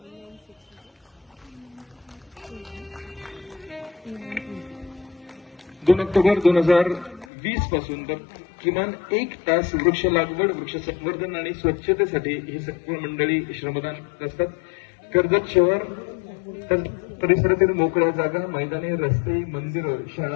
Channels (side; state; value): right; drops out; at 7.2 s